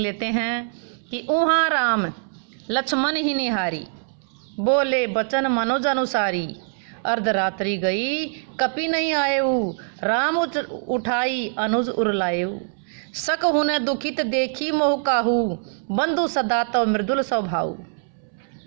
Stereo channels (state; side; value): silent; left; 63 dB below the other